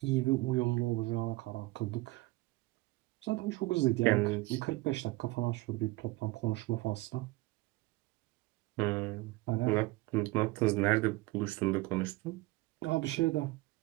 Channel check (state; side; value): quieter; left; 20.8 dB